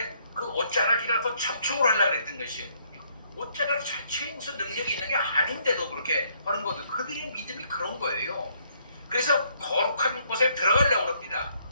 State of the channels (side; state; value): both; inverted; correlation -0.69